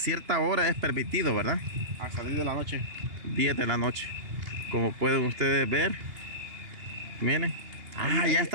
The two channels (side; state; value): left; late; 2.8 ms